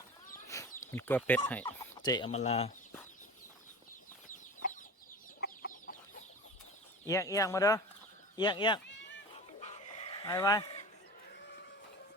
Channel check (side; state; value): both; normal; correlation 0.35